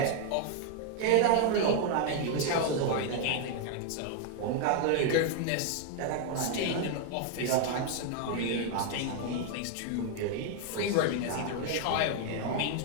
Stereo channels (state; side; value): different; both; correlation 0.00